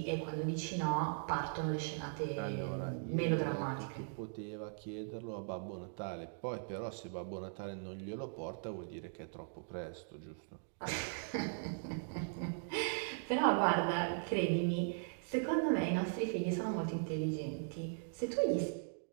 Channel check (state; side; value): silent; left; digital silence